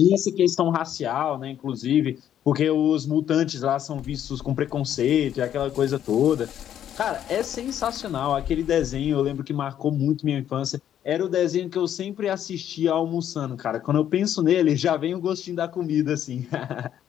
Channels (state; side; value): quieter; right; 10.4 dB